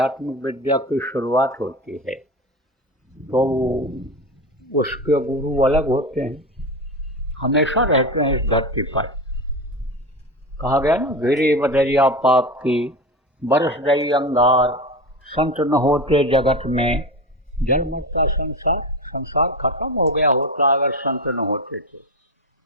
विद्या की शुरुआत होती है। तो उसके गुरु अलग होते हैं, हमेशा रहते हैं इस धरती पर। कहा गया ना, गिरी बदरिया पाप की, बरस गई अंगार, संत न होते जगत में, जल मरता संसार। संसार खत्म हो गया होता अगर संत न होते थे।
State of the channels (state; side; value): normal; both; correlation 0.23